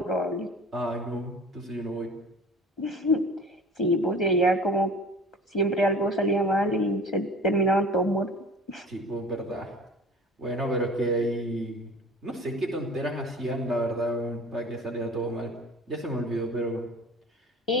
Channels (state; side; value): normal; both; correlation 0.41